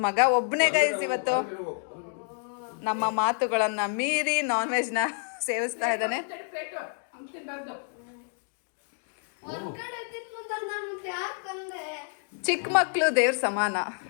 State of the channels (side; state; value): right; silent; 55 dB below the other